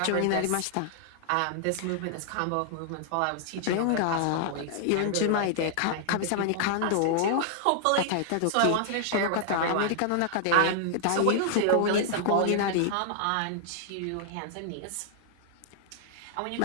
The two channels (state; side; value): different; both; correlation -0.01